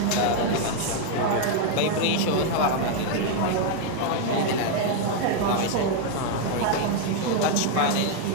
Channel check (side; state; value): both; different; correlation 0.00